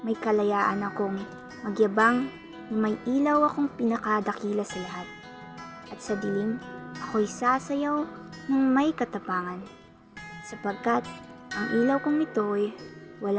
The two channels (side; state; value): both; identical; correlation 1.00